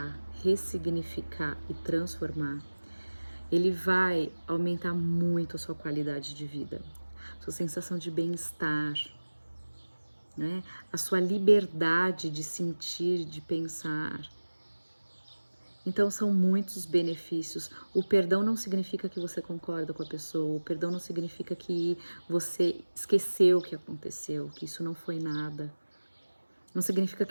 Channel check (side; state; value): both; inverted; correlation -1.00